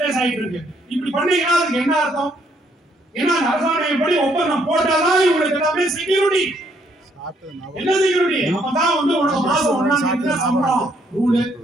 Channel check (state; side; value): normal; both; correlation 0.70